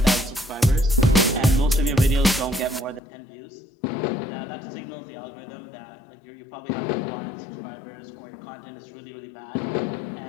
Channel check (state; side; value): drops out; right; at 3.0 s